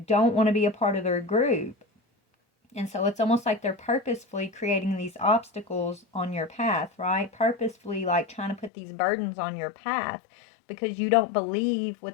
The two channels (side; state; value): right; drops out; at 8.7 s